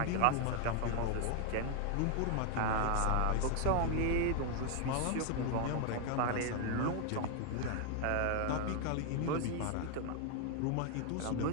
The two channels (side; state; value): both; different; correlation 0.00